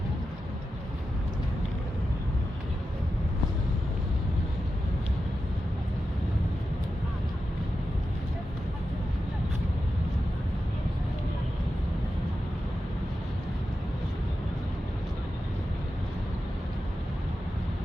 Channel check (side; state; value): both; normal; correlation 0.91